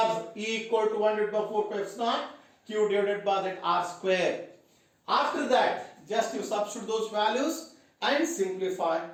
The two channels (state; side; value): identical; both; correlation 1.00